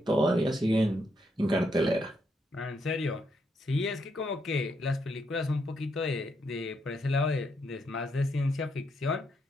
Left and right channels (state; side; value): normal; both; correlation 0.78